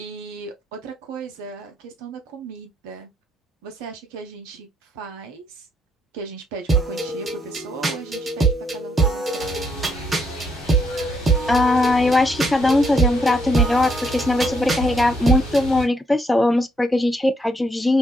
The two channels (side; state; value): both; normal; correlation 0.74